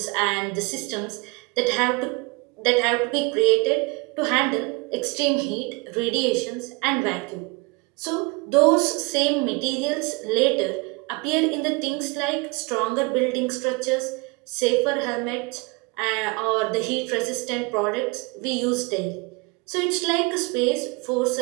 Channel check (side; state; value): left; quieter; 27.4 dB